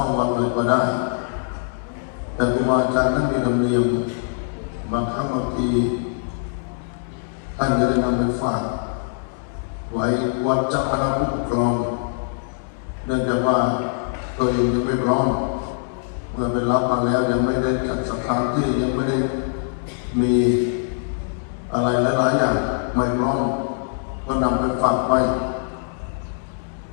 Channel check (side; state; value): right; silent; 64 dB below the other